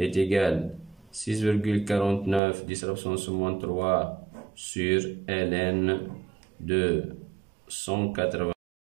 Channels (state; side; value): drops out; left; at 2.4 s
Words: égal à 6,49 10 à la puissance moins 3 sur ln de 180.